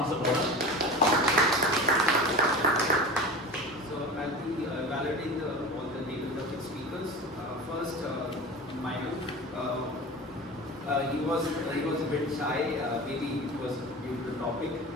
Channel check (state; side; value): normal; both; correlation 0.32